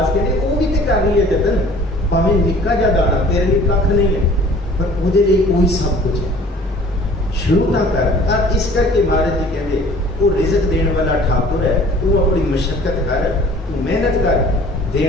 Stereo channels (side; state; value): both; normal; correlation 0.50